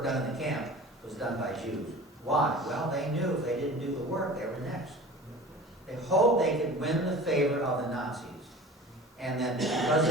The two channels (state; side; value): normal; both; correlation 0.40